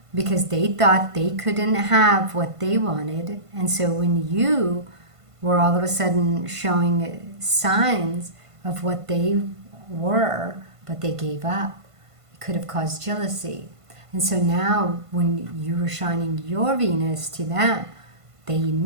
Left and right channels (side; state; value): left; late; 1.5 ms